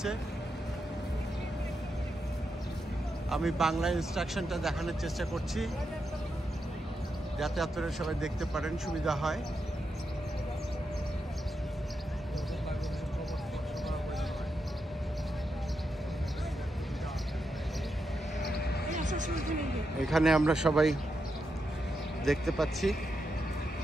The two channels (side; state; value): both; normal; correlation 0.85